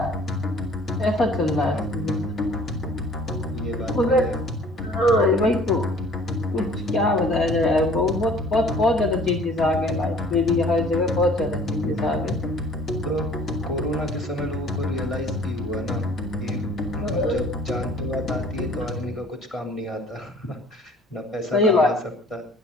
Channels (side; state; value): both; normal; correlation 0.52